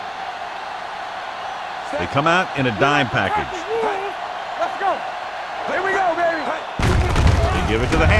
They come out in a dime package. Let's go. Here we go, baby. They give it to the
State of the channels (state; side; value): identical; both; correlation 1.00